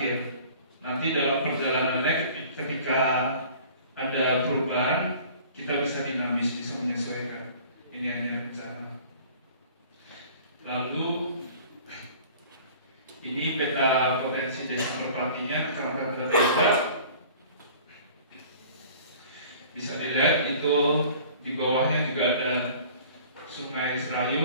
Nanti dalam perjalanannya ketika ada perubahan, kita bisa dinamis, bisa menyesuaikan. Ini hanya rencana. Lalu ini peta potensi desa Merpatinya, Kecamatan Berdesa. Bisa dilihat itu di bawahnya juga ada Sungai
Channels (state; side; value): inverted; both; correlation -0.48